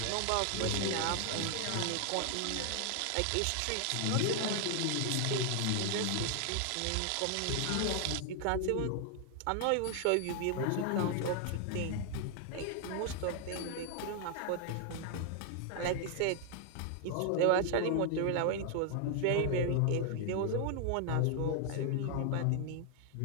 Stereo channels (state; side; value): different; both; correlation 0.00